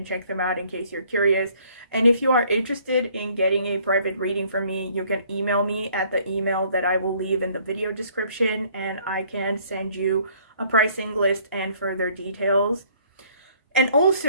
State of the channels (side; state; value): both; inverted; correlation -0.60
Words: check them out in case you're curious. And if you are interested in getting a private reading from me, you can email me at the email that I will leave in the video description, and I can send you a pricing list and further details. And